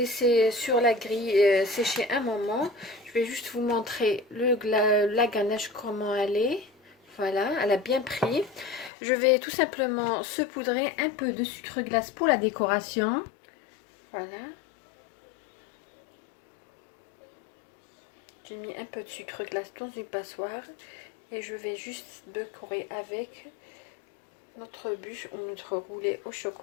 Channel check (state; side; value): drops out; right; at 8.9 s